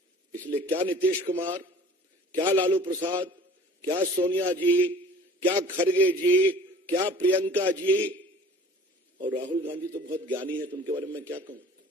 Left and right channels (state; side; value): normal; both; correlation 0.47